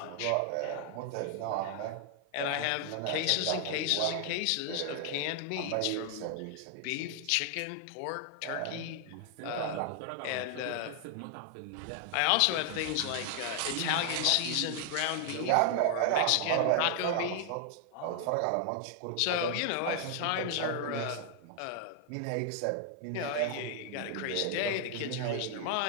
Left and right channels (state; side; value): different; both; correlation 0.00